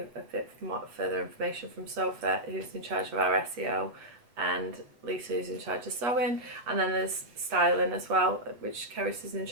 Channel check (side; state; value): left; late; 8.6 ms